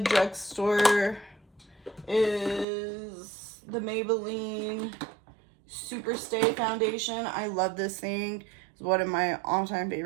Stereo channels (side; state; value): left; drops out; at 2.7 s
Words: is the Maybelline Super Stay Foundation. I love this thing. It's one of my all-time